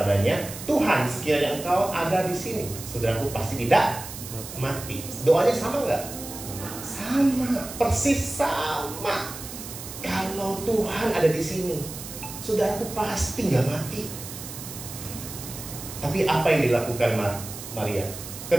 Tuhan, sekiranya engkau ada di sini, saudaraku pasti tidak mati. Doanya sama nggak? Sama, persis sama. Kalau Tuhan ada di sini, saudaraku pasti nggak mati. Tapi apa yang dilakukan Maria?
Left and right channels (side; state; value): right; noise; hiss, 11 dB below the sound